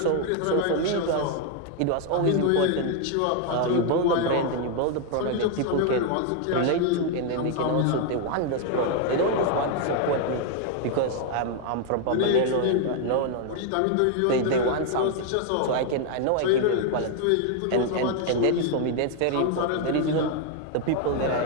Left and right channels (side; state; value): both; different; correlation 0.00